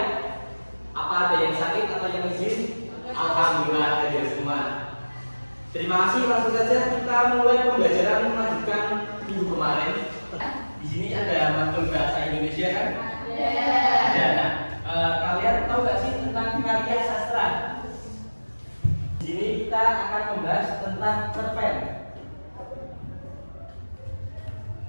Apa ada yang sakit atau yang izin? Alhamdulillah hadir semua. Terima kasih. Langsung saja kita mulai pembelajaran melanjutkan minggu kemarin. Di sini ada matkul bahasa Indonesia kan? Ada. Nah, kalian tahu nggak sih tentang karya sastra? Di sini kita akan membahas tentang cerpen.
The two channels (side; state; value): both; inverted; correlation -1.00